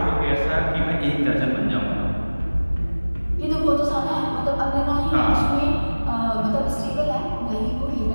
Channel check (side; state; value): both; inverted; correlation -1.00